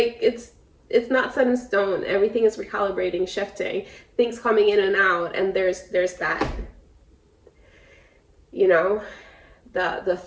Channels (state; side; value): identical; both; correlation 1.00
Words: it's not set in stone. Everything is recalibrating, shifting, things coming in and out, and there's that, you know, the